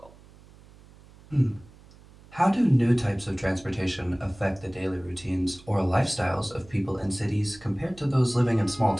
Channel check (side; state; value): right; noise; hum, 24 dB below the sound